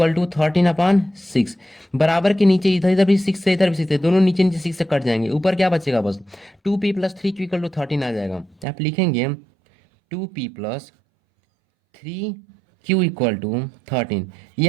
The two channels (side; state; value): left; drops out; at 8.7 s